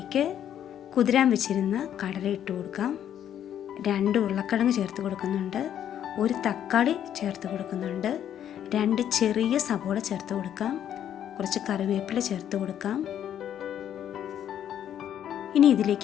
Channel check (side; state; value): right; quieter; 10.1 dB